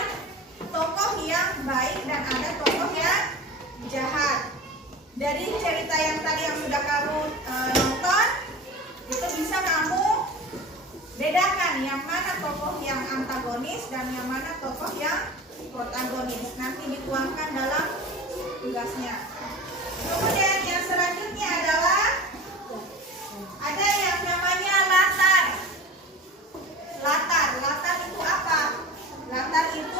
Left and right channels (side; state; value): both; normal; correlation 0.35